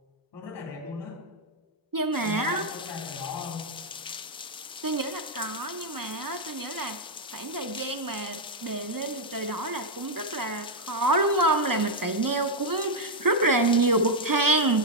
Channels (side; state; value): both; normal; correlation 0.00